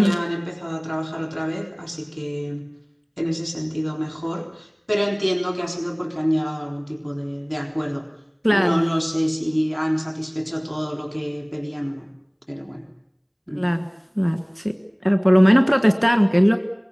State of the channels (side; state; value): both; identical; correlation 1.00